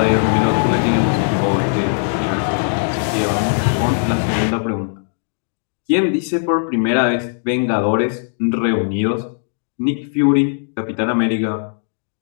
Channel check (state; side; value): silent; right; digital silence